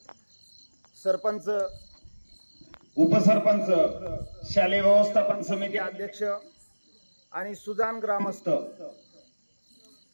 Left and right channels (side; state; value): both; inverted; correlation -1.00